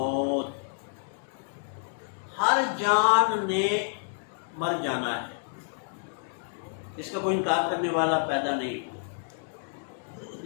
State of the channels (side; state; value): right; silent; digital silence